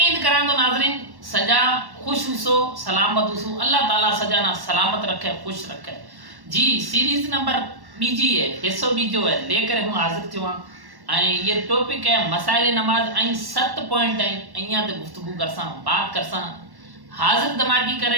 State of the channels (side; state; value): left; late; 1.1 ms